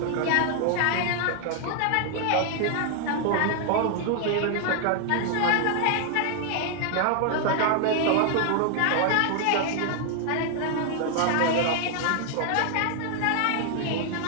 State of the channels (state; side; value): different; both; correlation 0.00